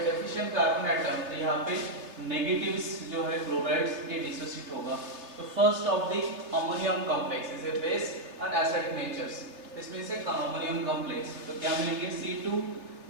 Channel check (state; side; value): late; left; 3.1 ms